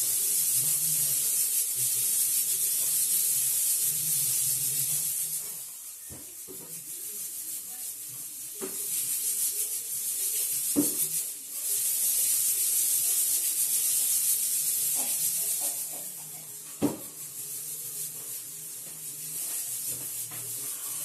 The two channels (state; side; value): identical; both; correlation 1.00